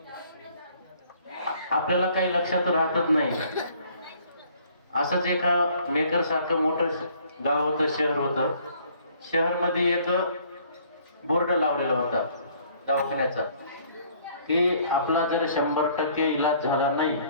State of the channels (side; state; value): both; inverted; correlation -0.59